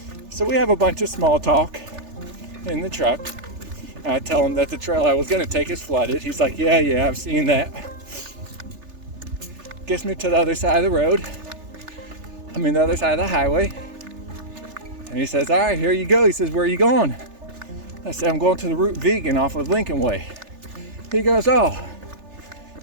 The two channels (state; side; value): late; left; 3.4 ms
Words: So we have a bunch of small talk in the truck. I tell him that the trail I was going to take is flooded. He's like, yeah, I've seen that. Gets me to the other side of the road. The other side of the highway. And he says, all right, here you go. He says, where are you going? I said, I'm going to the Route Vegan off of Lincoln Way. He goes, oh.